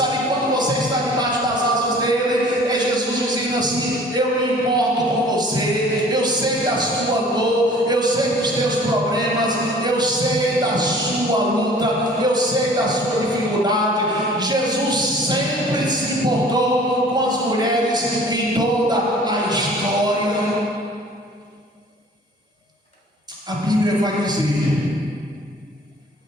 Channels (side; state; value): both; normal; correlation 0.49